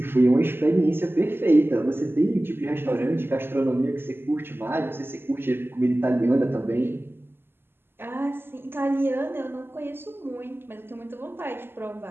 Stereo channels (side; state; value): left; late; 0.11 ms